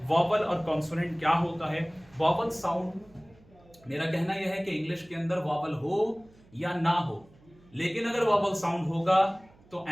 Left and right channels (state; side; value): noise; right; hum, 28 dB below the sound